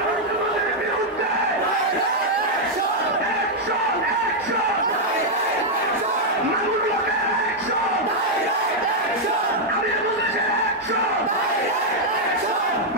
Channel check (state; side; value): normal; both; correlation -0.03